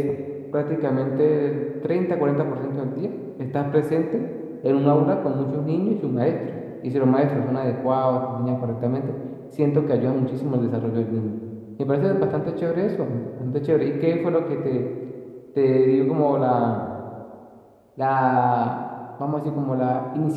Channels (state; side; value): identical; both; correlation 1.00